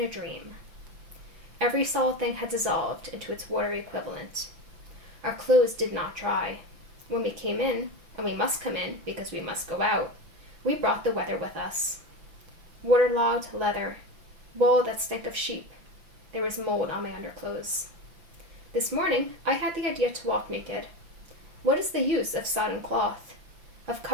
a dream. Every solid thing had dissolved into its watery equivalent. Our clothes did not dry. When we came in, and we must come in because we must go out, we brought the weather with us. Waterlogged leather, wool that stank of sheep. There was mold on my underclothes. This morning, I had the idea to walk naked. What is the use of sodden cloth, of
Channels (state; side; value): late; left; 5.9 ms